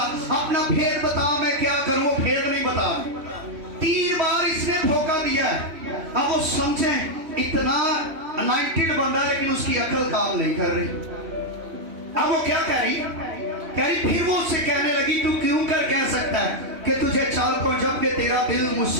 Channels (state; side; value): late; left; 3.0 ms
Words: अपना भेद बता, मैं क्या करूं? वो भेद नहीं बता। 3 बार इसने धोखा दिया है। अब वो समझे इतना अनॉइंटेड बंदा, लेकिन उसकी अकल काम नहीं कर रही। अब वो क्या कह रही? कह रही फिर वो उससे कहने लगी, तू क्यों कर कह सकता है कि तुझे चाल को, जबकि तेरा दिल